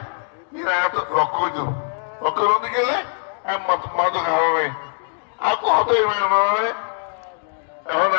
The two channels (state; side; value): silent; right; 64 dB below the other